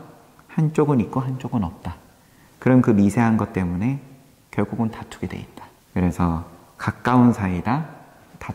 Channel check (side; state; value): both; identical; correlation 1.00